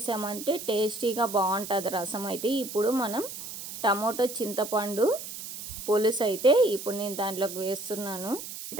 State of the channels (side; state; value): right; noise; hiss, 9 dB below the sound